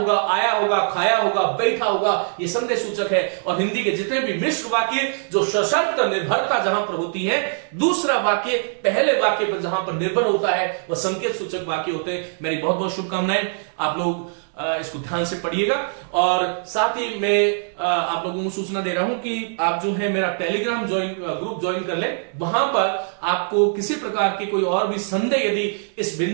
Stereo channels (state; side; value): silent; left; digital silence